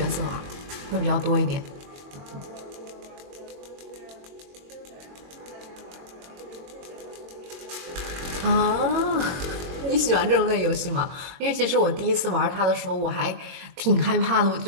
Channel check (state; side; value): late; left; 22 ms